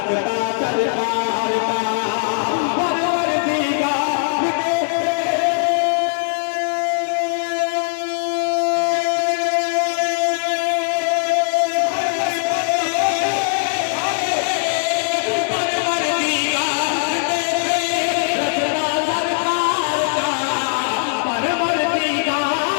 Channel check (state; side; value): silent; right; digital silence